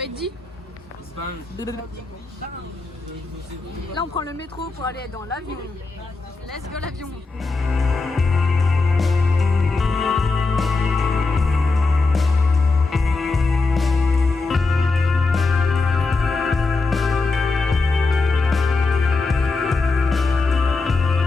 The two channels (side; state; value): right; quieter; 3.8 dB